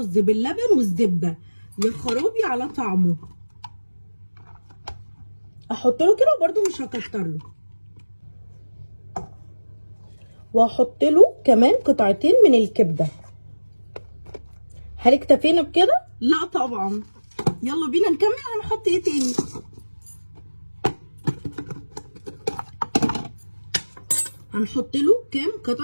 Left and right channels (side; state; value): both; inverted; correlation -1.00